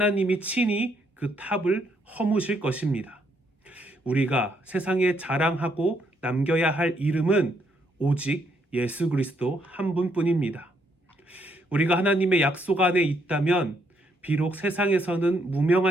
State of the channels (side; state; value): both; normal; correlation 0.73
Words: 친히 그 탑을 허무실 것입니다. 우리가 세상에 자랑하고 남겨야 할 이름은 오직 예수 그리스도 한 분뿐입니다. 우리가 하나님의 약속 안에 있다면 비록 세상에서는